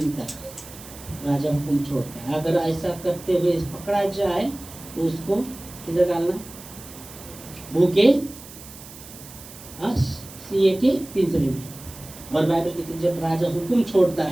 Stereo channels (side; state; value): right; noise; hiss, 17 dB below the sound